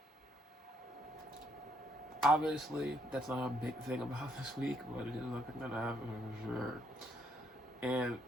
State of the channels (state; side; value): normal; both; correlation 0.71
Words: Obviously, that's not a big thing about this week, but it is something that happened for sure. And